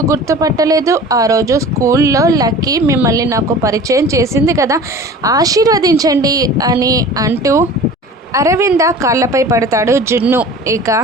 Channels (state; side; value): normal; both; correlation 0.40